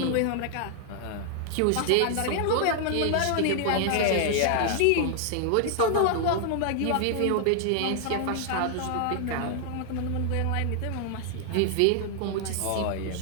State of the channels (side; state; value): both; different; correlation 0.00